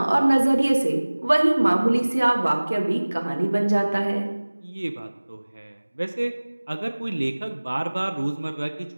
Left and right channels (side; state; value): both; inverted; correlation -1.00